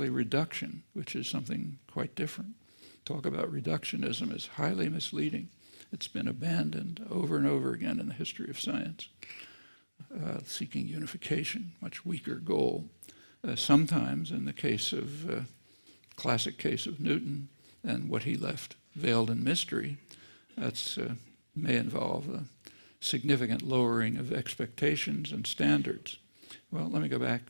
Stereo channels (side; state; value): both; inverted; correlation -1.00